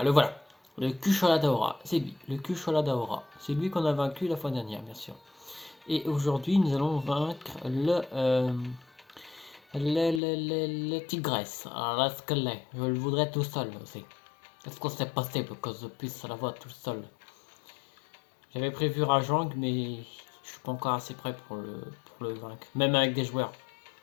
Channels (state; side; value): drops out; right; at 10.2 s